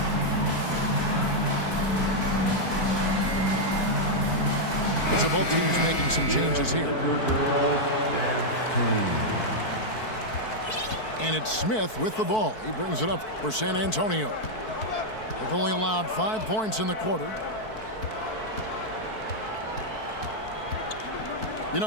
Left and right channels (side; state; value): right; late; 4.6 ms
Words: So both teams making some changes here. And it's Smith with the ball. He brings it up for San Antonio. They've only allowed 5 points in the quarter. You